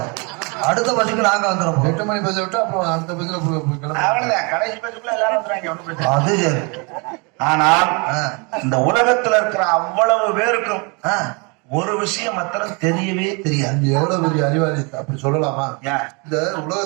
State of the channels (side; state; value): left; quieter; 31.5 dB